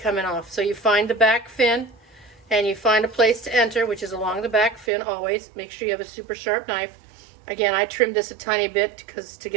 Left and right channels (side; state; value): left; drops out; at 4.9 s